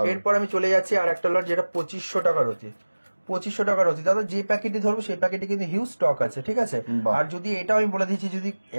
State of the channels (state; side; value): inverted; both; correlation -1.00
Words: এরপর আমি চলে যাচ্ছি আর একটা লট, যেটা 2500 টাকা রতি। 2500 টাকা রতি দাদা। যে প্যাকেটই ধরবো সেই প্যাকেটে কিন্তু হিউজ স্টক আছে, ঠিক আছে। আর যদি এটাও আমি বলে দিচ্ছি, যদি